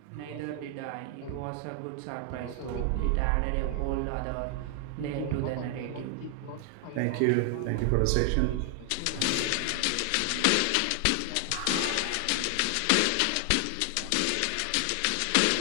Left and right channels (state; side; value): different; both; correlation 0.00